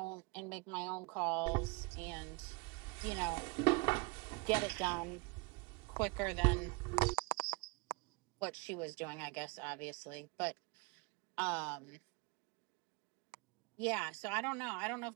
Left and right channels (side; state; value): left; quieter; 28.1 dB